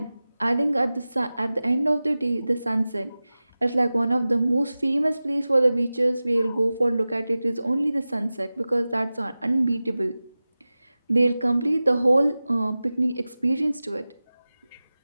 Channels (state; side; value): inverted; both; correlation -0.96